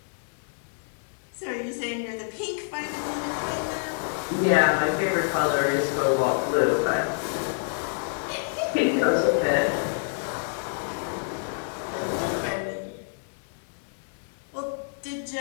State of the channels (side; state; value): right; silent; digital silence